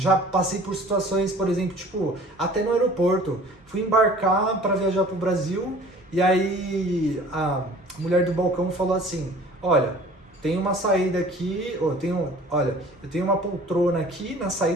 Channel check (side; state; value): both; normal; correlation 0.48